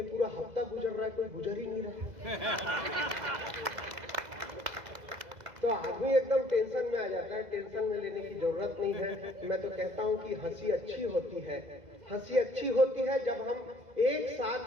पूरा हफ्ता गुजर रहा है, कोई गुजर ही नहीं रहा। तो आदमी एकदम टेंशन में आ जाता है। टेंशन में लेने की जरूरत नहीं है। मैं तो कहता हूँ कि हंसी अच्छी होती है, हंसी अच्छी होती है जब हम एक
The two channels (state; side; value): late; left; 2.0 ms